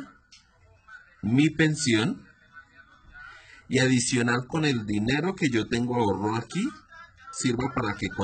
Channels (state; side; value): identical; both; correlation 1.00